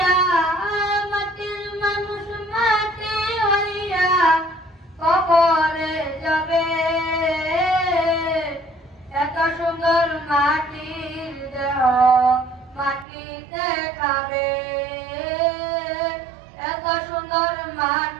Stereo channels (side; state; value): left; drops out; at 13.1 s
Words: মাটির মানুষ মাটি হইয়া কবরে যাবে। এত সুন্দর মাটির দেহ মাটিতে খাবে। এত সুন্দর